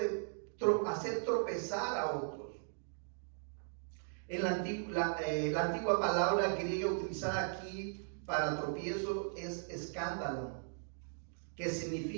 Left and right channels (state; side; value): silent; left; digital silence